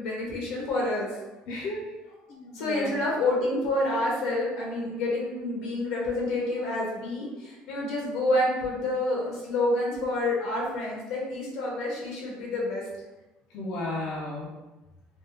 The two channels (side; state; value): both; normal; correlation 0.57